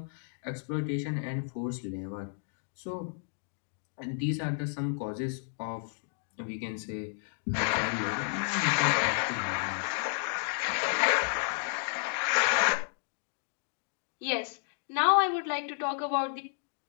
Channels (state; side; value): silent; right; digital silence